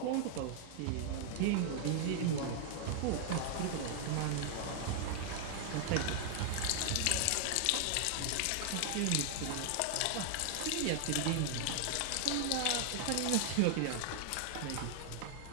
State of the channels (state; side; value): different; both; correlation 0.00